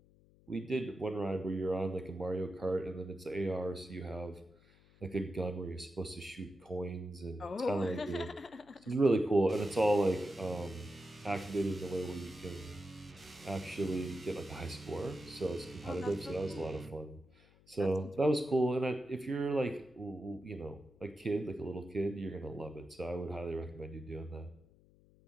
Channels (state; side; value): noise; left; hum, 28 dB below the sound